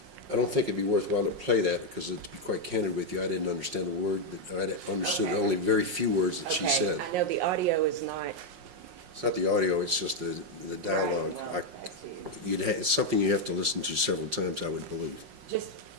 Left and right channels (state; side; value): late; left; 5.5 ms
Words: I don't think it'd be worthwhile to play that because, to be quite candid with you, I didn't understand a word. I understood Okay. only very few words that she said. I know the audio is not. It's not the audio, it's just the dialogue. Right, well, that's you. It's something you have to listen to several times, I would believe. Just